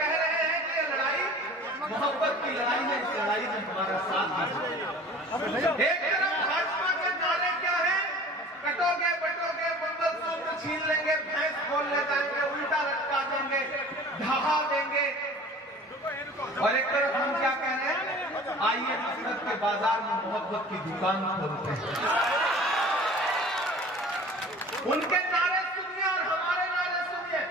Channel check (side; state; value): both; normal; correlation 0.44